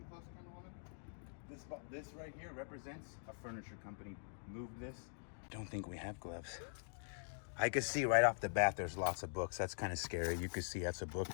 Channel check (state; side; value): silent; right; digital silence